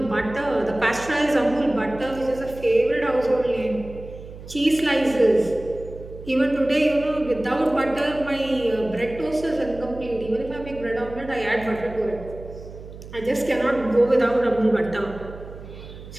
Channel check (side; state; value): right; noise; hum, 15 dB below the sound